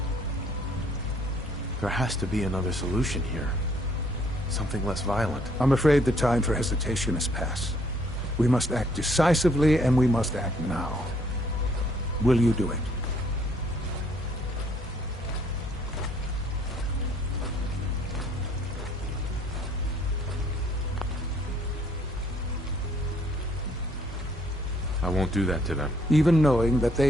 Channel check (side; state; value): both; normal; correlation 0.64